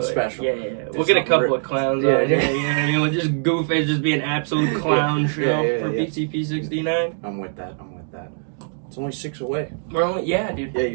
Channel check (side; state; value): left; silent; digital silence